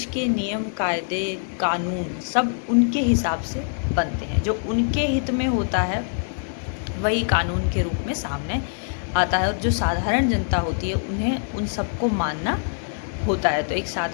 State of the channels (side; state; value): right; silent; digital silence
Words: के नियम, कायदे, कानून सब उनके हिसाब से बनते हैं। जो उनके हित में होता है वही कानून के रूप में सामने आता है, और जो साधारण जनता होती है उन्हें उन सबको मानना होता है। तो एक